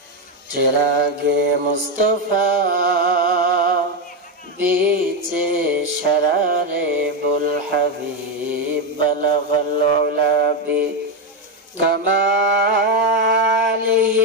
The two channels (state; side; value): normal; both; correlation 0.08